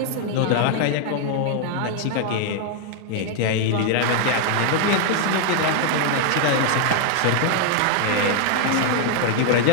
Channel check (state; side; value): different; both; correlation 0.00